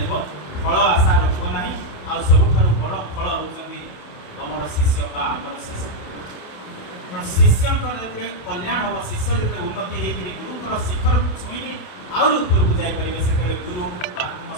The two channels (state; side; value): late; right; 28 ms